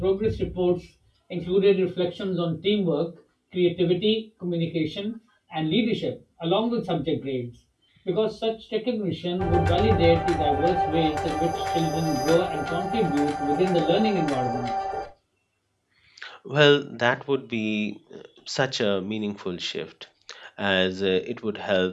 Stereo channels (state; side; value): identical; both; correlation 1.00